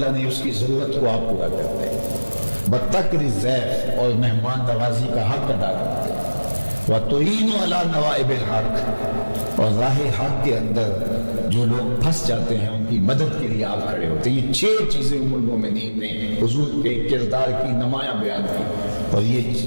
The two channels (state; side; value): inverted; both; correlation -1.00